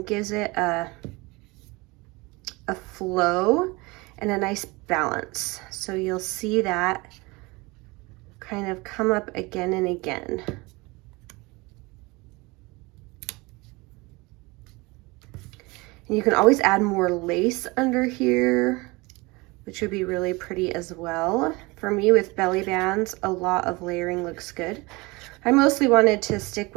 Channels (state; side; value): quieter; left; 24.4 dB